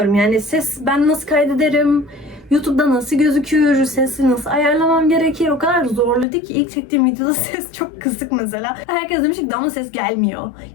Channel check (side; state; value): right; drops out; at 6.2 s